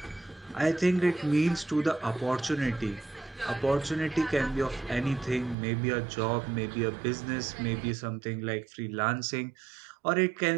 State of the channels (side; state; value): left; drops out; at 5.6 s